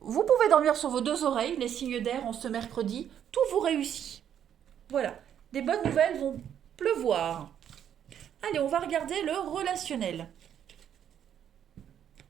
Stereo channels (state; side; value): quieter; left; 9.5 dB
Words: pouvez dormir sur vos deux oreilles, les signes d'air en ce mercredi, tout vous réussit. Voilà, des bonnes nouvelles vont pleuvoir. Allez, on va regarder le relationnel.